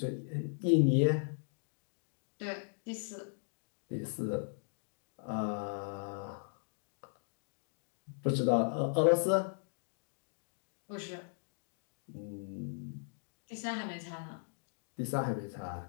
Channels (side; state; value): right; silent; digital silence